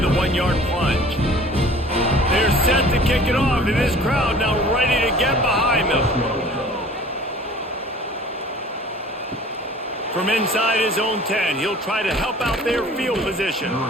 a 1-yard plunge. They're set to kick it off, and this crowd now ready to get behind them. From inside his own 10, he'll try to help out their field position.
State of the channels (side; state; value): both; normal; correlation 0.47